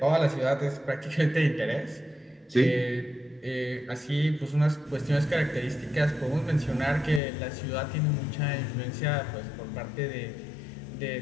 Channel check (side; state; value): right; drops out; at 7.2 s